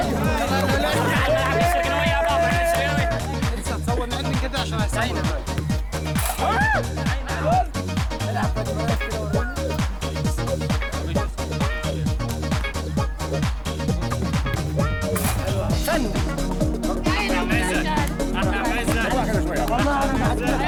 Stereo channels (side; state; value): both; identical; correlation 1.00